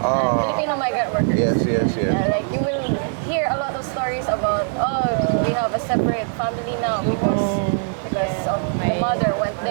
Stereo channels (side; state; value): left; silent; digital silence